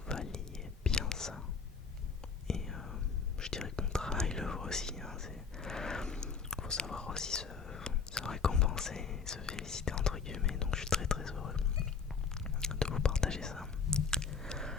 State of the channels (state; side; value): quieter; right; 5.7 dB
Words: valiez bien ça. Et je dirais que mon travail le vaut aussi. Faut savoir aussi se récompenser, se féliciter entre guillemets. Donc je suis très très heureux de vous partager ça.